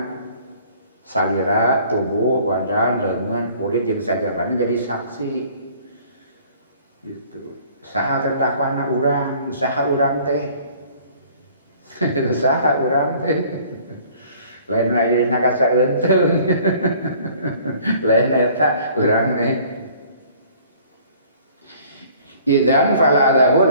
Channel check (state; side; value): inverted; both; correlation -0.54